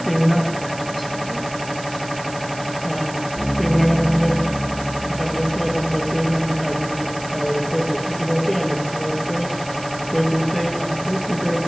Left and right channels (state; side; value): noise; right; hiss, 15 dB below the sound